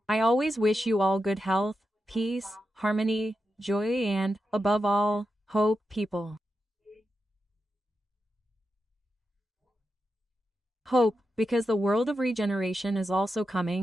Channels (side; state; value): both; normal; correlation 0.88